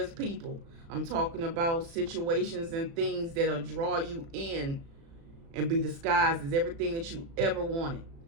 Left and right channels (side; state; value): left; late; 36 ms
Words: people. I'm talking about situations and things that'll draw you in and be disguised as everything that you ever wanted.